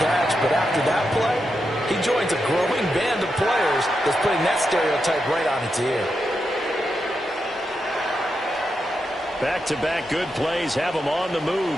catch, but after that play, he joins a growing band of players that's putting that stereotype right on its ear. Back-to-back good plays have them on the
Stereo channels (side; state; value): right; noise; hum, 30 dB below the sound